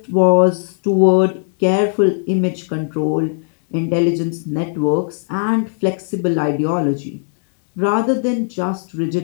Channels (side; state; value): right; silent; 67 dB below the other